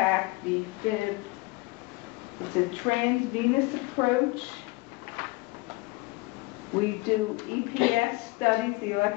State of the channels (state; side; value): quieter; right; 22.7 dB